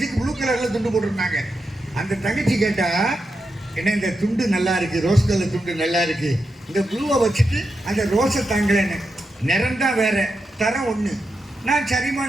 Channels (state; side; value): normal; both; correlation 0.87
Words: ப்ளூ கலரில் துண்டு போட்டிருந்தாங்க. அந்த தங்கச்சி கேட்டால், என்ன இந்த துண்டு நல்லா இருக்கு, ரோஸ் கலர் துண்டு நல்லா இருக்கு, இந்த ப்ளூவை வச்சுட்டு அந்த ரோஸை தாங்கலன்னு. நிறம் தான் வேற, தரம் ஒன்று. நான்